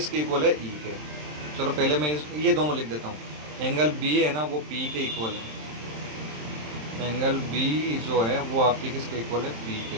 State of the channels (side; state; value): left; late; 27 ms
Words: इक्वल है, E के। चलो पहले मैं ये दोनों लिख देता हूँ। एंगल B है ना वो P के इक्वल है, एंगल B जो है वो आपकी किसके इक्वल है, P